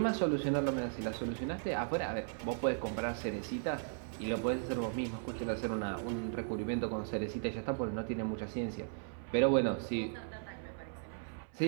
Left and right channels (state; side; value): silent; left; 53 dB below the other